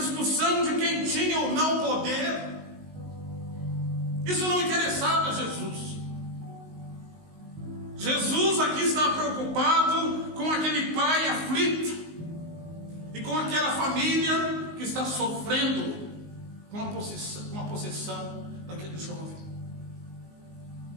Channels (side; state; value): left; late; 19 ms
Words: de quem tinha ou não poder. Isso não interessava a Jesus. Jesus aqui está preocupado com aquele pai aflito e com aquela família que está sofrendo com a possessão daquele jovem.